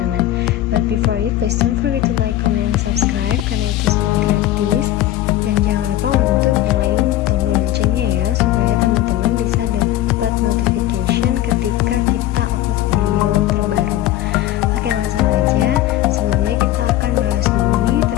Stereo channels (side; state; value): right; quieter; 14.0 dB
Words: But before it, please don't forget to like, comment, and subscribe karena itu semua gratis. Dan jangan lupa untuk nyalain tombol loncengnya ya, supaya teman-teman bisa dapat notification ketika kita upload video terbaru. Oke, langsung aja. Sebelumnya kita akan bahas dulu nih